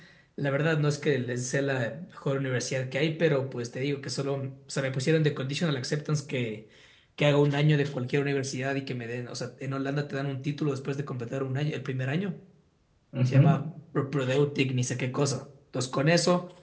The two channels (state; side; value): identical; both; correlation 1.00